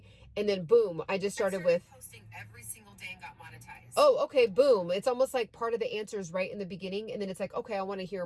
And then boom, I just started with posting every single day and got monetized. Oh, okay. Boom. It's almost like part of the answers right in the beginning. And then it's like, okay, I want to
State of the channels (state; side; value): identical; both; correlation 1.00